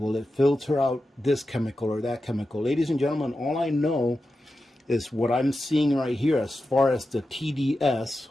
Will it filter out this chemical or that chemical? Ladies and gentlemen, all I know is what I'm seeing right here as far as the TDS,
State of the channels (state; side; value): normal; both; correlation 0.91